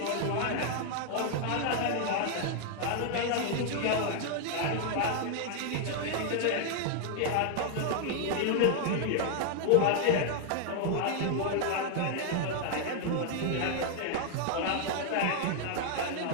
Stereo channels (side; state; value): both; different; correlation 0.00